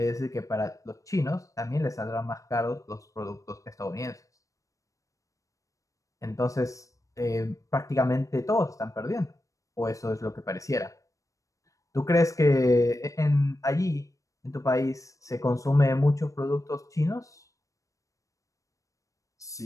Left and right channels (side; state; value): right; late; 0.16 ms